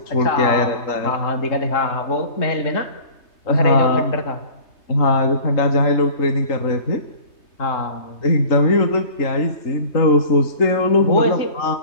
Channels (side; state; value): right; late; 3.2 ms